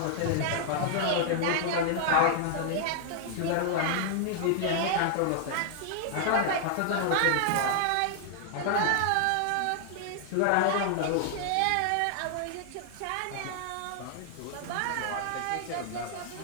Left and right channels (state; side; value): different; both; correlation 0.00